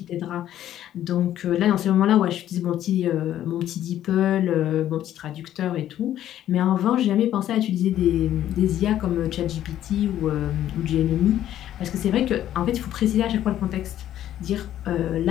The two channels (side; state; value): right; quieter; 11.9 dB